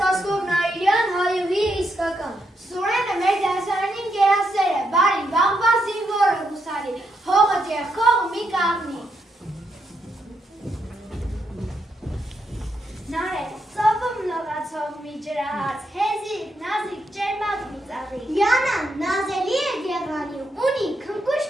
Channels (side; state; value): both; normal; correlation 0.80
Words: Վասկով Նայիրյան, հայուհի իսկական։ Սուրենը մեր դասարանին գերասեր է, բարի, բաղբա զինվորը հուսալի, հողը ձեռքով մի կաղնի։ Նարե, ծովում լողացող մի ջրահաց, հեզիկ, նազիկ, ջերմակ մի ծաղի։ Յանան նազելի է գեղանի, ունի